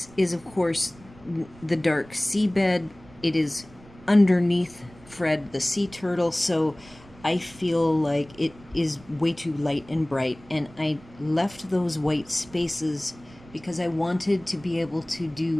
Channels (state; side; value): noise; right; rumble, 23 dB below the sound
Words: is, of course, the dark seabed. It is underneath Fred the sea turtle, so I feel like it is way too light and bright, and I left those white spaces because I wanted to be able to